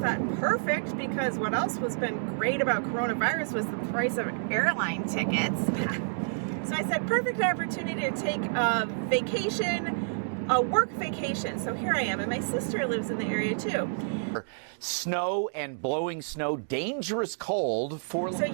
perfect, because what else was been great about coronavirus was the price of airline tickets. So I said, perfect opportunity to take a vacation, a work vacation. So here I am, and my sister lives in the area too. Snow and blowing snow, dangerous cold for... So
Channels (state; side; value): silent; left; digital silence